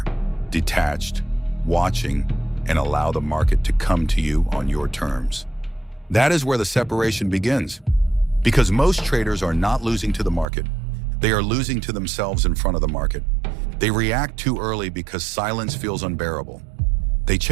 detached, watching, and allow the market to come to you on your terms. That is where the separation begins. Because most traders are not losing to the market. They are losing to themselves in front of the market. They react too early because silence feels unbearable. They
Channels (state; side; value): drops out; left; at 10.5 s